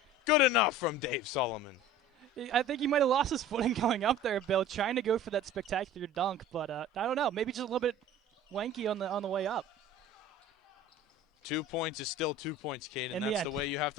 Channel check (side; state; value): both; normal; correlation 0.42